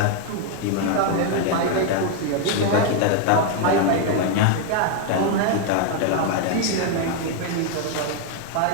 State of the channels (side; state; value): both; different; correlation 0.00